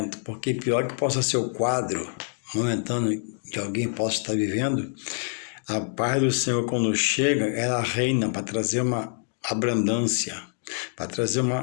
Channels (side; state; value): right; silent; digital silence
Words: porque pior que possa ser o quadro momentâneo que alguém possa estar vivendo, a paz do Senhor, quando chega, ela reina para trazer uma abrandância, para trazer